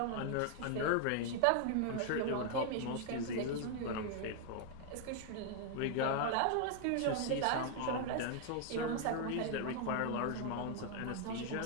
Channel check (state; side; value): different; both; correlation 0.00